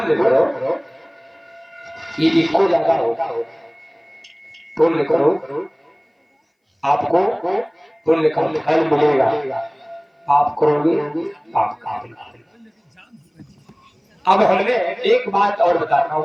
करो, ये इको ज्यादा होगा। पुण्य करो, आपको पुण्य का फल मिलेगा। आप करोगे पाप का। अब हमने एक बात और बताता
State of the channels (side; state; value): both; identical; correlation 1.00